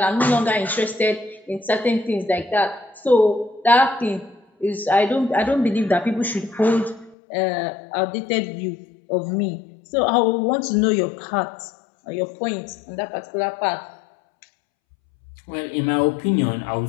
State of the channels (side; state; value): right; drops out; at 7.2 s